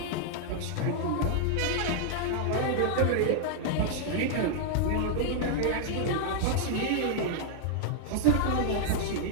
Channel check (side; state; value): both; different; correlation -0.01